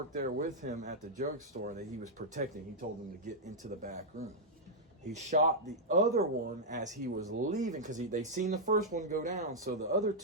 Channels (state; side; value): normal; both; correlation -0.06